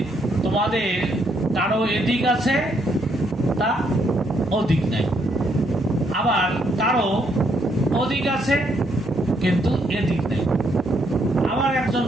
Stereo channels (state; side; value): normal; both; correlation 0.73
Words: তোমাদের কারো এদিক আছে তা অধিক নাই, আবার কারো অধিক আছে কিন্তু এদিক নাই। আবার একজন